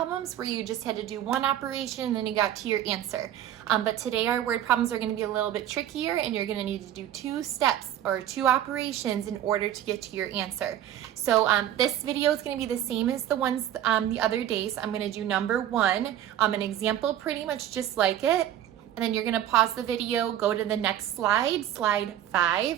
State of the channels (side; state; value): left; quieter; 11.4 dB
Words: where you just had to do one operation and then you got to your answer. But today our word problems are going to be a little bit trickier and you're going to need to do two steps or two operations in order to get to your answer. So this video is going to be the same as the ones the other days. I'm going to do number one, an example pretty much just like it. And then you're going to pause the video, go to the next slide, slide